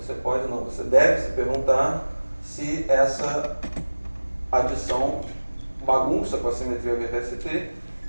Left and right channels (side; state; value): both; inverted; correlation -1.00